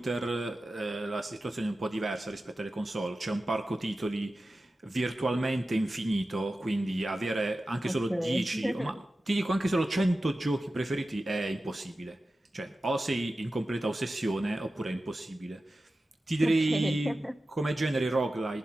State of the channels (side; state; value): both; normal; correlation 0.94